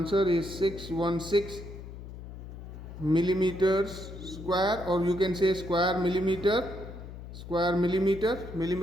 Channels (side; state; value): left; noise; hum, 12 dB below the sound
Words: is 616 millimeters square, or you can say square millimeter,